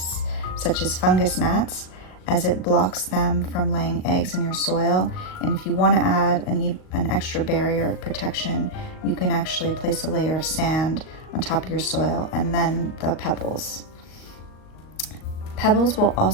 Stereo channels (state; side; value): late; right; 38 ms